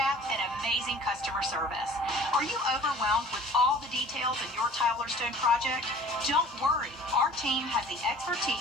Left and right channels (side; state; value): both; normal; correlation 0.48